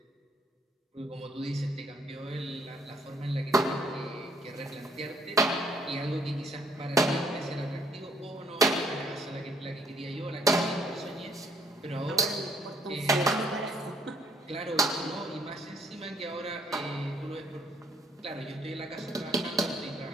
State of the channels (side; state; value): both; normal; correlation 0.65